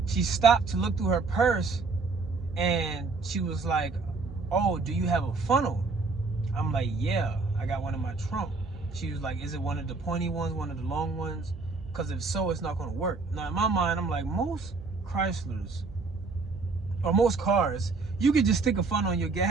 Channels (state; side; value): quieter; left; 4.1 dB